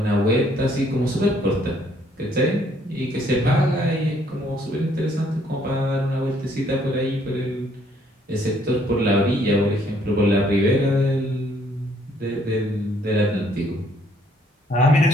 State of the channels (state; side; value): normal; both; correlation 0.65